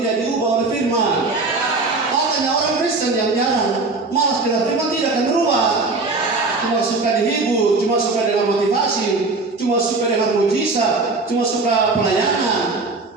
diubah oleh firman. Makanya orang Kristen yang jarang malas dengan firman tidak akan berubah. Cuma suka dihibur, cuma suka dengan motivasi, cuma suka dengan mujizat, cuma suka pelayanan.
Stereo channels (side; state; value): left; quieter; 3.6 dB